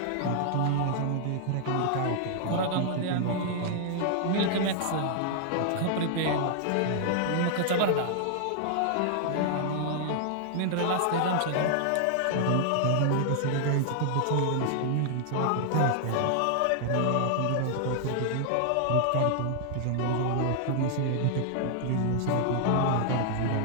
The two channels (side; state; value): both; different; correlation 0.00